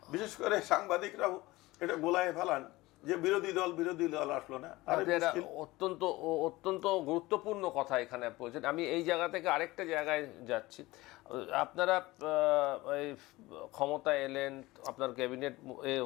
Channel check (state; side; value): quieter; right; 19.7 dB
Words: বিশেষ করে সাংবাদিকরাও এটা গোলায় ফেলান যে বিরোধী দল আসলো না। অত্যন্ত অত্যন্ত গুরুত্বপূর্ণ কথা এখানে বলছেন। আমি এই জায়গা থেকে আরেকটা জায়গায় যাচ্ছি। আপনারা ক্ষমতা এলেন, আপনার ক্যাবিনেট